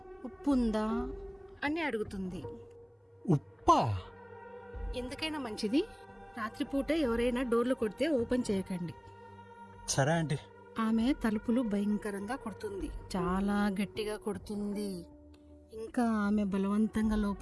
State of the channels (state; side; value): identical; both; correlation 1.00